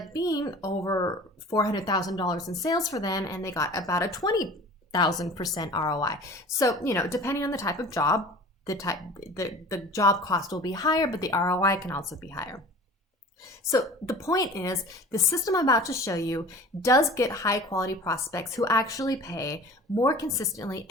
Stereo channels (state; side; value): normal; both; correlation 0.42